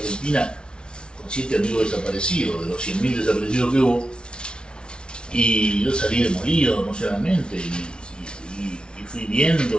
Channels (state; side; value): late; right; 0.056 ms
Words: con 7 amigos desaparecidos, de los 100.000 desaparecidos que hubo, y yo salí demolido emocionalmente y fui